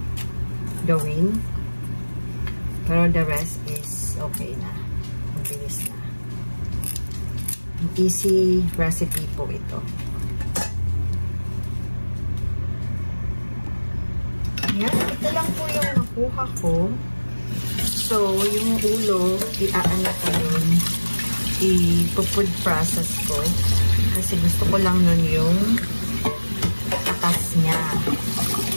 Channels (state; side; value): inverted; both; correlation -1.00